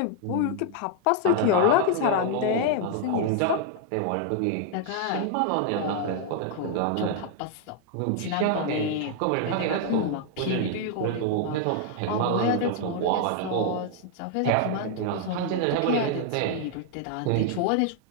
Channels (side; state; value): both; different; correlation 0.00